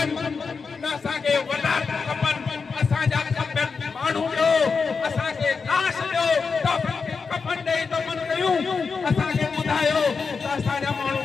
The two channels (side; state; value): right; quieter; 5.1 dB